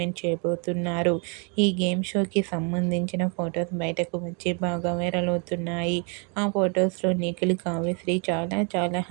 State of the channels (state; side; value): quieter; left; 36.7 dB